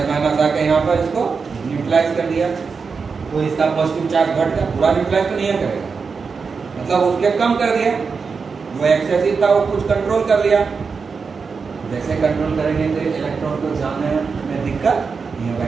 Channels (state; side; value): quieter; left; 5.2 dB